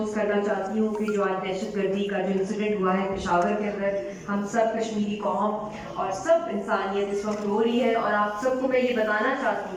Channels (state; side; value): identical; both; correlation 1.00